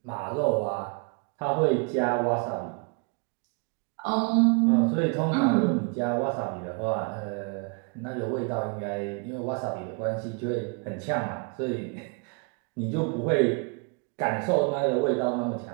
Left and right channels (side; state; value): left; quieter; 35.5 dB